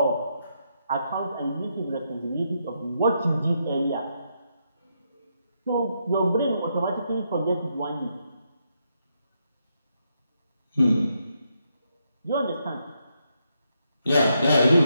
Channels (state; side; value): inverted; both; correlation -0.80